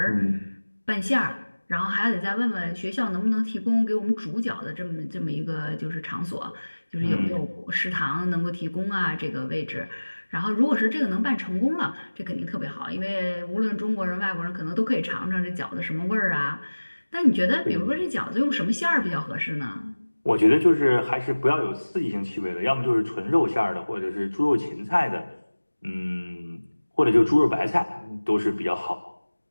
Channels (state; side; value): inverted; both; correlation -1.00